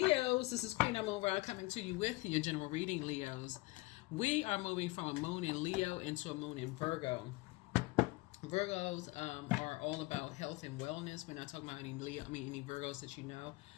This is Queen Amun Ra coming to you with your general reading, Leos. We are moving from a moon in Leo into a moon in Virgo. Virgos are all about health and wellness. We're not talking about any Leo, any Virgos that you know,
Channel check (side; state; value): right; quieter; 22.3 dB